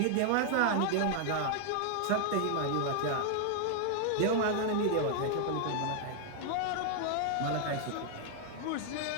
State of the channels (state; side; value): different; both; correlation 0.00